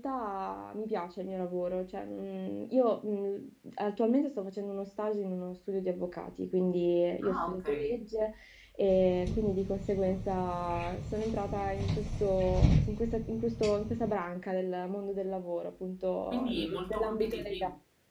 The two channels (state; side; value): identical; both; correlation 1.00